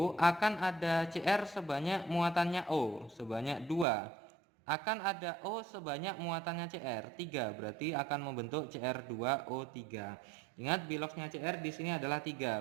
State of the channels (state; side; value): drops out; left; at 3.9 s